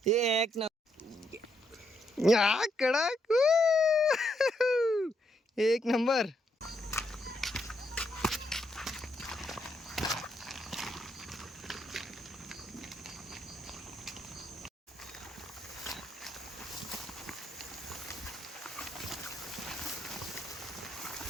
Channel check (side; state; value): both; normal; correlation 0.76